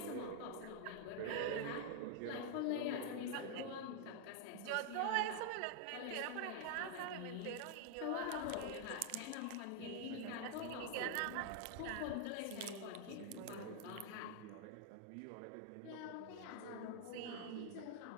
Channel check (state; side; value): different; both; correlation 0.00